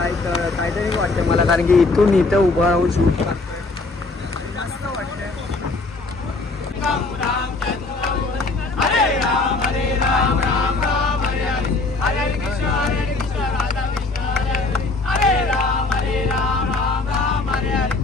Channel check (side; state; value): right; quieter; 3.5 dB